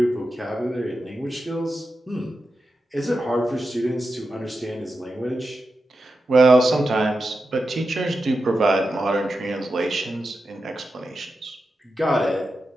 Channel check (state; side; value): normal; both; correlation 0.90